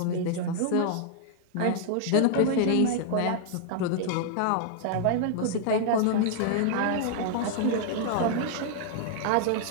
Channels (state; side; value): different; both; correlation -0.01